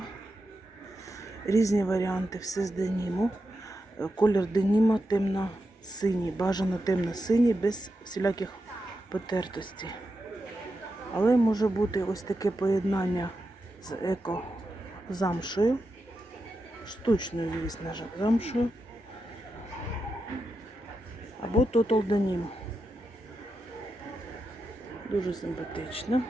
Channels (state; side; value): normal; both; correlation 0.88